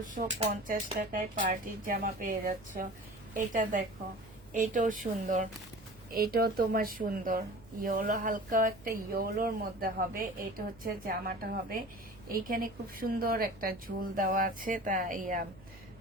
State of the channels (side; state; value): right; noise; hum, 23 dB below the sound